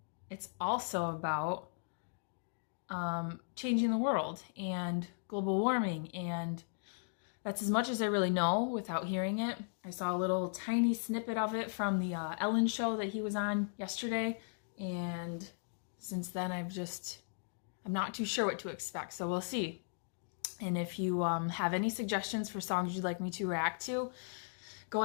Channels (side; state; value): right; silent; digital silence